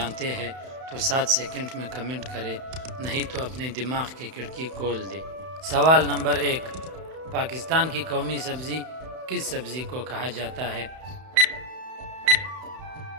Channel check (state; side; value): late; left; 31 ms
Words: ہیں تو 7 سیکنڈ میں کمنٹ کریں، نہیں تو اپنے دماغ کی کھڑکی کھول دیں۔ سوال نمبر 1، پاکستان کی قومی سبزی کس سبزی کو کہا جاتا ہے؟